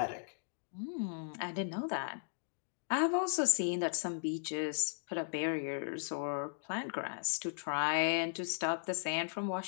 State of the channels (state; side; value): silent; right; digital silence